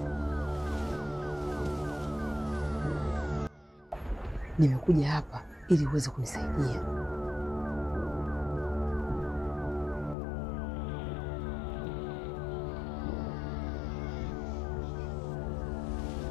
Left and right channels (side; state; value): right; drops out; at 10.2 s